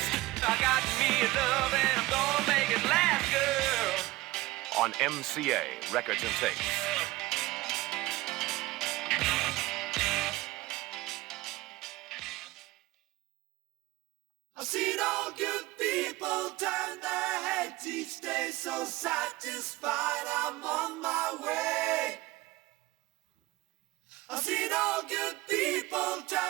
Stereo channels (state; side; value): quieter; left; 19.5 dB